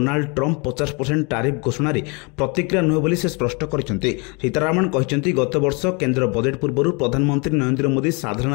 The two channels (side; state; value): right; quieter; 31.0 dB